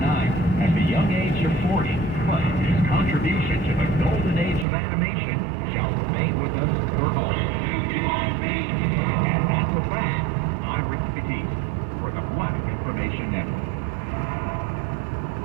at the young age of 40, but his contribution to the golden age of animation shall remain with us for always. And that's a fact. I'm Rick Batiste for the Black Information Network.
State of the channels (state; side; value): drops out; left; at 4.7 s